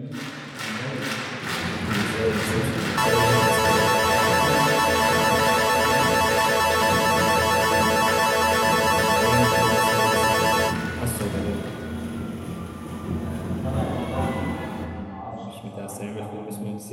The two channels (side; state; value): both; identical; correlation 1.00